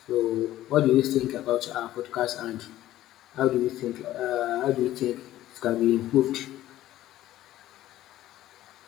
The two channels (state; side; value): quieter; right; 14.2 dB